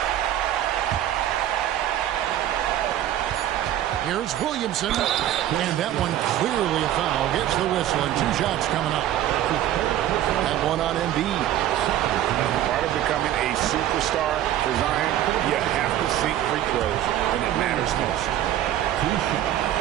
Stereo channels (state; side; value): quieter; left; 12.3 dB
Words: Here's Williamson, and that one clearly a foul. Gets the whistle, and 2 shots coming up. That one on Embiid. Part of becoming a superstar for Zion, you have to sink free throws when it matters most.